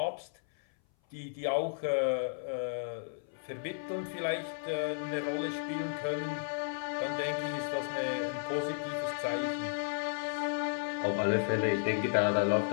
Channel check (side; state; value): right; silent; 55 dB below the other